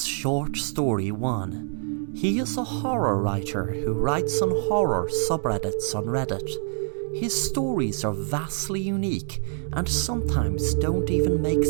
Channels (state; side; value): silent; left; 61 dB below the other